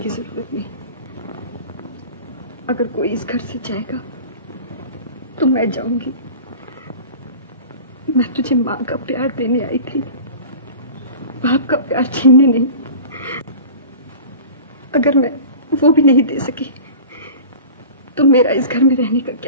जरूरत नहीं। अगर कोई इस घर से जाएगा तो मैं जाऊंगी। मैं तुझे माँ का प्यार देने आई थी, बाप का प्यार छीनने नहीं। अगर मैं वो भी नहीं दे सकी तो मेरा इस घर में रहने का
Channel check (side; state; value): both; inverted; correlation -0.38